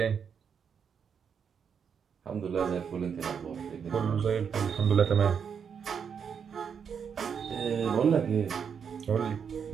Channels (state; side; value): quieter; left; 7.0 dB